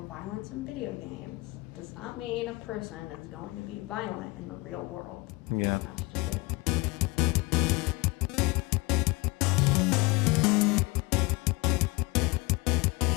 in video games does not mean a person is going to be violent in the real world. Yeah. And that's just it.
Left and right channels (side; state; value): right; quieter; 24.7 dB